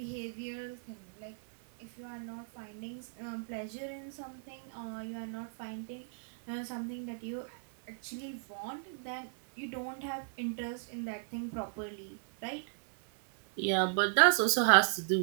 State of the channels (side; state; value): left; silent; digital silence